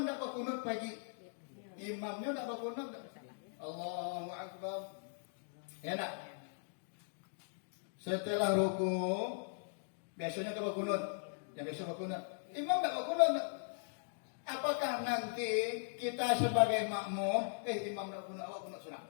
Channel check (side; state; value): right; silent; digital silence